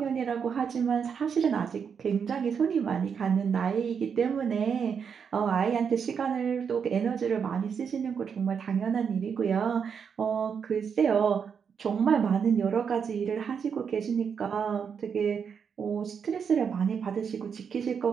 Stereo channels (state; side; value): quieter; left; 6.8 dB